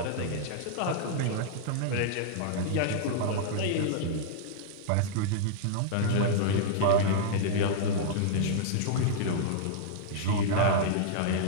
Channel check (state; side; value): different; both; correlation -0.01